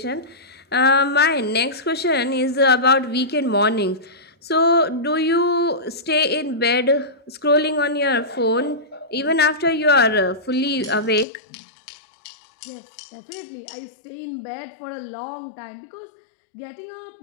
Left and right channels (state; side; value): drops out; right; at 11.2 s